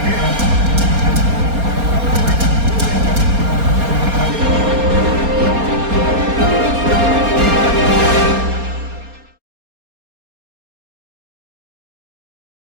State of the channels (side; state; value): left; late; 4.3 ms